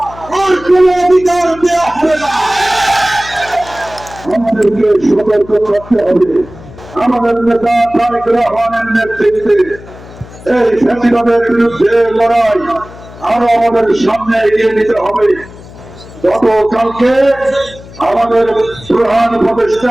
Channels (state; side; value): noise; left; hum, 18 dB below the sound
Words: আর কোন অধিকার দেওয়া হবে না। আমাদেরকে সতর্ক থাকতে হবে। আমাদের নেতা তারেক রহমানের নেতৃত্বে এই ফ্যাসিবাদের বিরুদ্ধে লড়াই আরো আমাদের সামনে এগিয়ে নিতে হবে। গতকালকে আমাদের প্রধান